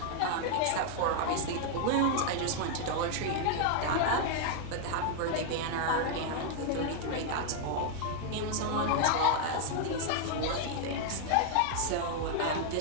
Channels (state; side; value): different; both; correlation 0.00